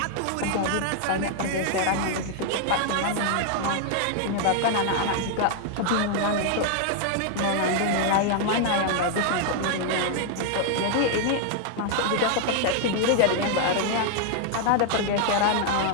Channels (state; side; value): different; both; correlation 0.00